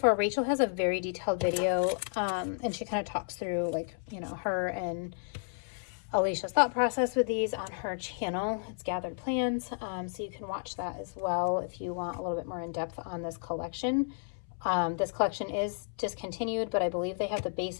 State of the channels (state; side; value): silent; right; 56 dB below the other